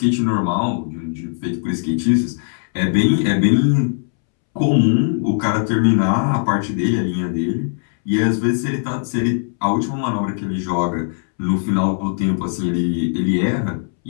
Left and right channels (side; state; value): right; silent; 66 dB below the other